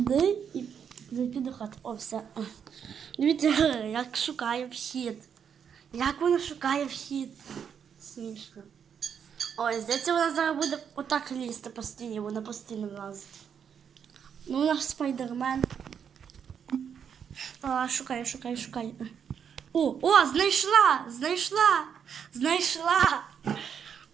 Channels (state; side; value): quieter; left; 7.6 dB